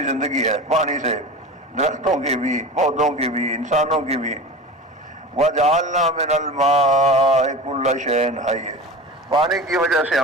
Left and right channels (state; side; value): normal; both; correlation 0.32